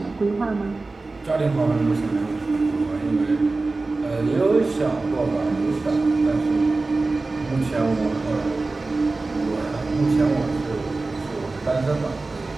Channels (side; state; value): left; quieter; 3.5 dB